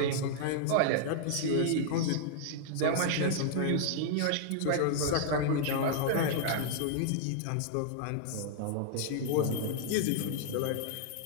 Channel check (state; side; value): different; both; correlation 0.00